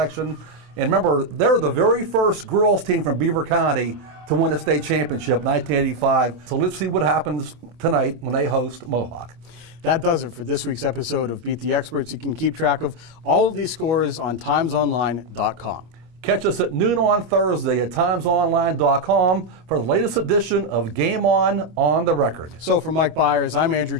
And remember, they're the very first girls team from Beaver County to win a state championship, 1985. So let's see what happens tonight when they host Mohawk. That does it for this week's episode of Beat the Experts. You can keep track of all of these scores on timesonline.com. Catch us at noon on Thursday at timesonline.com for the latest edition of Game On the Record. So for Mike Bires, I'm Andrew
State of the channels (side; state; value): left; late; 25 ms